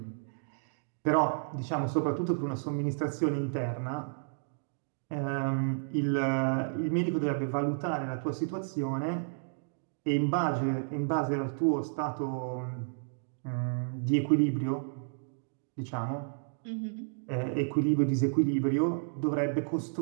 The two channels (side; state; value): left; silent; digital silence